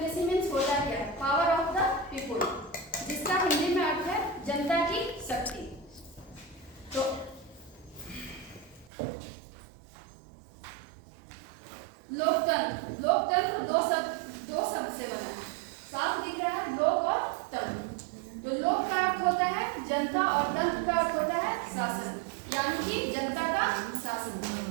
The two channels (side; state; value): left; drops out; at 8.9 s